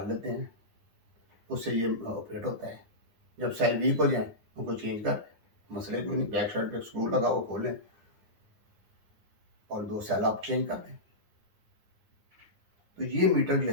लेते हैं, उससे ये ऑपरेट होता है। जब सेल वीक हो जाए उनको चेंज कर, मसले कोई नहीं, बैक साइड पे स्क्रू लगा वो खोलें और 2 सेल आप चेंज कर दें। तो ये मीटर जो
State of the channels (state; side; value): late; left; 9.9 ms